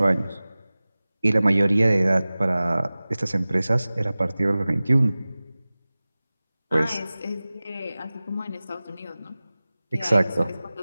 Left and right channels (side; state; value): both; inverted; correlation -0.98